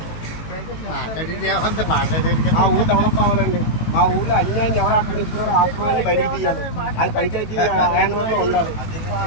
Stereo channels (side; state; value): right; late; 18 ms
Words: మా ఊరు డెవలప్ అవ్వాలండి. మా ఊర్లో అన్యాయం ఎవరు ఆక్రమిస్తున్నారో ఆత్మని బయటికి తీయాలి. అది పంచాయతీ హ్యాండ్ఓవర్లో ఉండాలి.